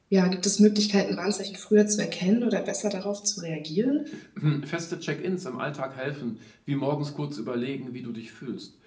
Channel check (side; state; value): both; identical; correlation 1.00